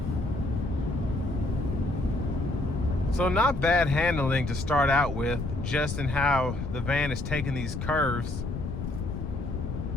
So not bad handling to start out with, just in how the van is taking these curves.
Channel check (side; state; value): left; noise; rumble, 5 dB below the sound